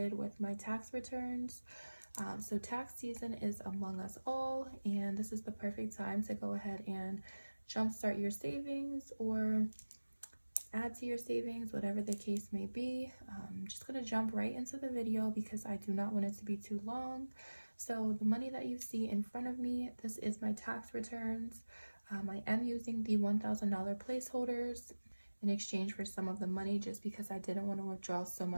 with my tax returns. So tax season is among us all, and this is the perfect time to go ahead and jumpstart your savings or add to your savings, whatever the case may be. I'm just going to jump right into the video because I do not want it to be too long. So the money that you see in front of me, this is my tax returns. I am using the $1,000 placeholders in exchange for some of the money just because I didn't want to withdraw so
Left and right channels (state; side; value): inverted; both; correlation -1.00